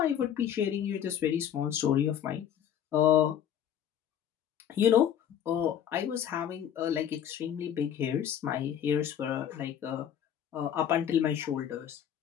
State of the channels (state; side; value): quieter; right; 9.6 dB